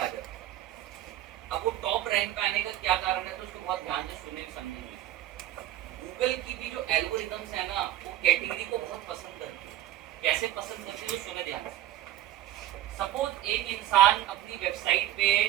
जाती है। अब वो टॉप रैंक पे आने का क्या कारण है, तो उसको बहुत ध्यान से सुने समझेंगे। गूगल की भी जो एल्गोरिथम्स है ना, वो कैटेगरी को बहुत पसंद करती है। कैसे पसंद करती है, सुने ध्यान से। सपोज एक इंसान अपनी वेबसाइट पे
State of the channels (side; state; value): left; quieter; 13.6 dB